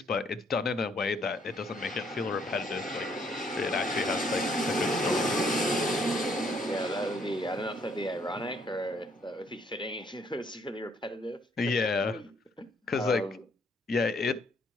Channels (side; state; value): both; normal; correlation 0.67